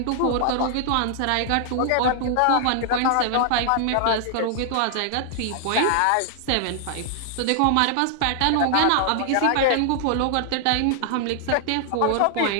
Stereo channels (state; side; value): different; both; correlation 0.00